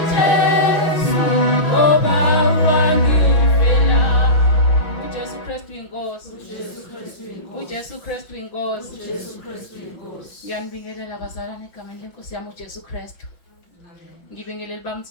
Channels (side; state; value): right; late; 6.2 ms